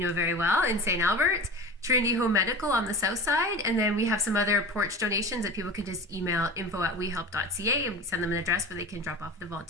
very well, in St. Albert, Trinity Home Medical on the south side, and then we have some other porch donations that people can just email info@wehelp.ca and we send them an address where they can drop off the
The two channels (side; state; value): both; normal; correlation 0.34